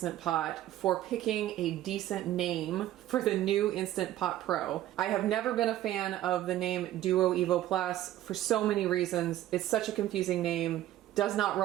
Pot for picking a decent name for the new Instant Pot Pro. I have never been a fan of the name Duo Evo Plus for so many reasons. It's such a confusing name, does not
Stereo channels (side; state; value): left; quieter; 13.6 dB